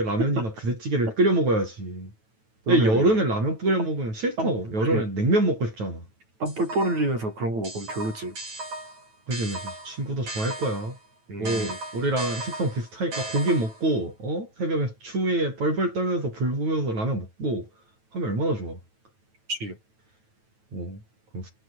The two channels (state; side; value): late; left; 9.2 ms